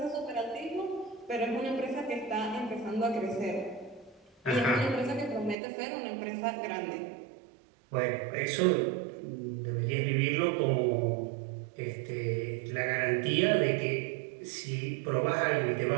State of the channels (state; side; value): drops out; left; at 5.6 s